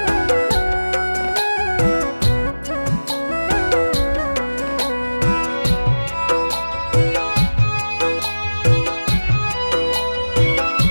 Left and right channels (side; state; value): both; inverted; correlation -1.00